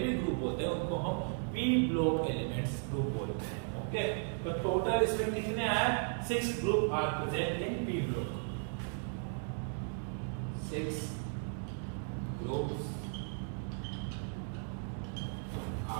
ग्रुप होते हैं उनको हम पी ब्लॉक एलिमेंट्स ग्रुप बोलते हैं। ओके, तो टोटल इसमें कितने आए? 6 group are present in P block. 6 groups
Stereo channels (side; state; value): left; silent; 54 dB below the other